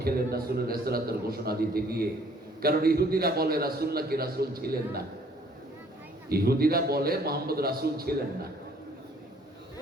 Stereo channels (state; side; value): normal; both; correlation 0.59